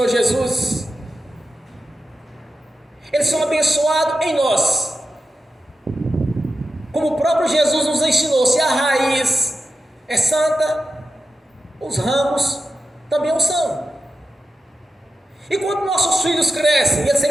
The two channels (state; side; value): normal; both; correlation 0.92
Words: Jesus, eles são abençoados em nós. Como o próprio Jesus nos ensinou, se a raiz é santa, os ramos também o são. E quando nossos filhos crescem, eles têm